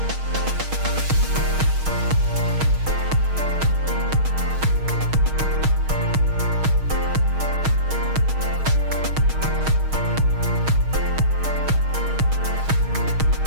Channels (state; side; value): late; left; 6.4 ms